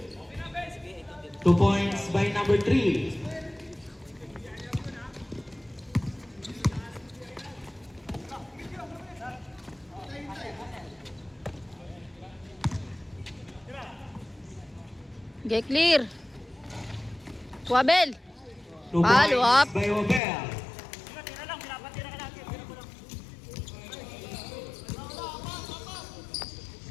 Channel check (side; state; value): right; drops out; at 20.2 s